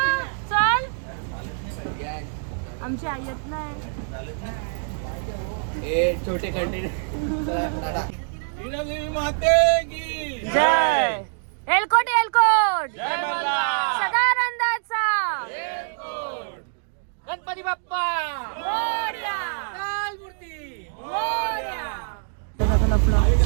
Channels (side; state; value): left; silent; digital silence